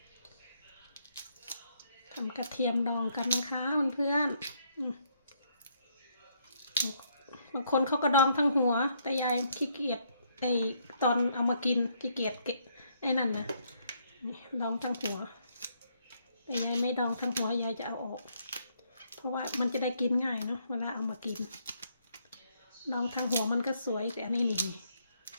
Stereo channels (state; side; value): inverted; both; correlation -0.71